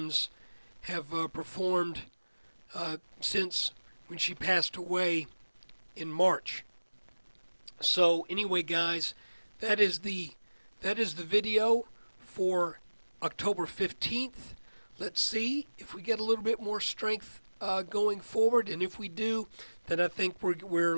have performed since when she passed away in March. So anyway, guys, that is the video for October 15th. Let's see if we get a little bit more strength going forward, and if we do, then I think we're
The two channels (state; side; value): inverted; both; correlation -1.00